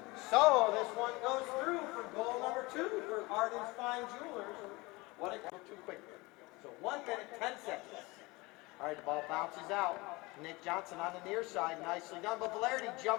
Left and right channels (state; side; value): quieter; right; 23.4 dB